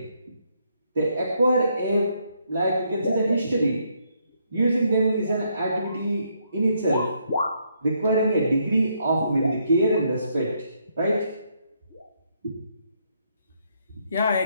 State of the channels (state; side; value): inverted; both; correlation -0.74